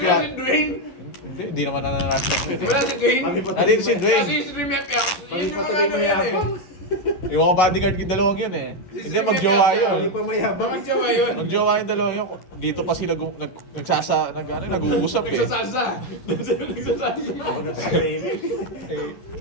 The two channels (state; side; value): late; right; 11 ms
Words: si Dwayne. Hindi naman nananastak yun eh. Wala si Dwayne. Kami pa Nandito si Dwayne. Kasi si Remiak Yak. Kami pa tuloy mayabang. Yung mga bodyguard yung dalawang yun eh. Hindi, magjowa Kami yun. pa mayabang. Bakit siya ba yun? Magjowa yung dalawang yun. Dito pa sila nag-uusap eh. Nagsasalsa. Nagsasalsa.